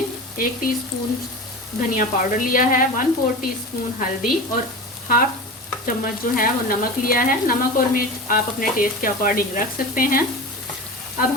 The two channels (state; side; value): normal; both; correlation 0.30